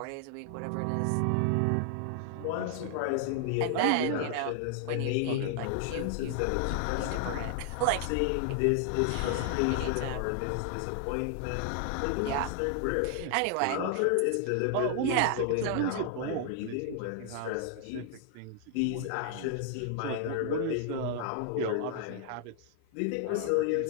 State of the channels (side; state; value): both; different; correlation 0.00